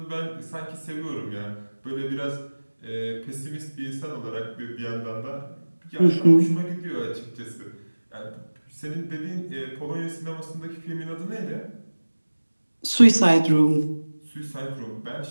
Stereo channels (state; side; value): inverted; both; correlation -1.00